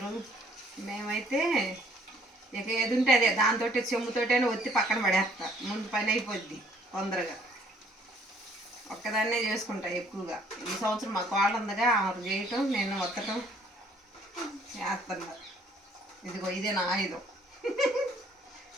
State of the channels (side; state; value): both; normal; correlation 0.61